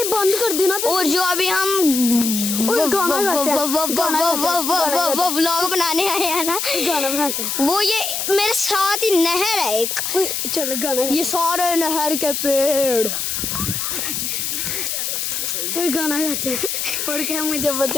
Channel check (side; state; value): left; noise; hiss, 2 dB below the sound